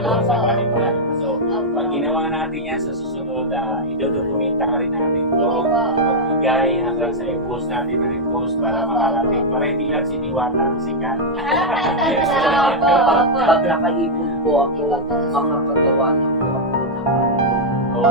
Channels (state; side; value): normal; both; correlation -0.04